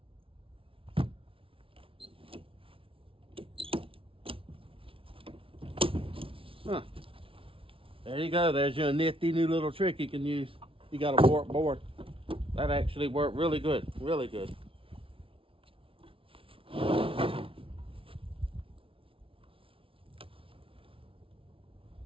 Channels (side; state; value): left; late; 0.26 ms